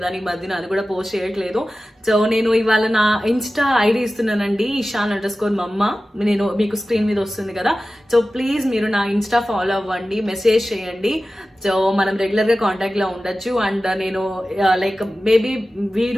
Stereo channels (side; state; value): both; normal; correlation 0.95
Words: ఈ మధ్యన అది కూడా పోస్ట్ చేయట్లేదు. సో నేను ఇవాళ నా ఇన్స్టా ఐడి ఇస్తున్నానండి, ishan_mama. నేను మీకు స్క్రీన్ మీద వస్తుంది కదా. సో ప్లీజ్ మీరు నా ఇన్స్టా ఫాలో అవ్వండి, మెసేజ్ చేయండి. సో మనం రెగ్యులర్ గా కాంటాక్ట్ లో ఉండొచ్చు. అండ్ నేను లైక్ మేబీ